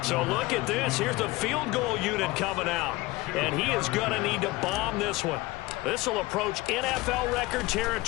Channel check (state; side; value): quieter; right; 20.6 dB